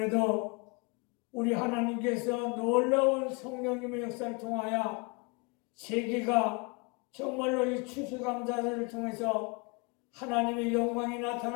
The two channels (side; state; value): right; quieter; 30.4 dB